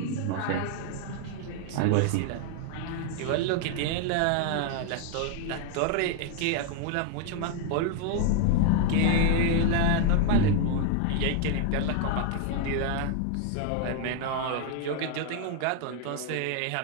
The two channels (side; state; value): both; different; correlation 0.00